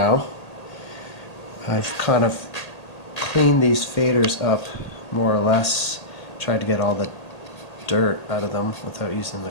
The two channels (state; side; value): late; right; 1.8 ms